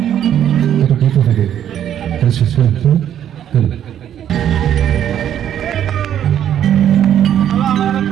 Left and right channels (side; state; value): left; quieter; 10.2 dB